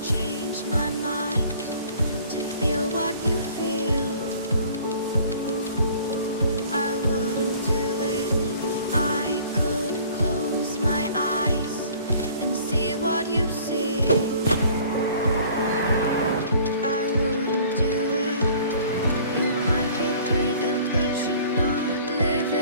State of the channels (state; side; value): inverted; both; correlation -0.52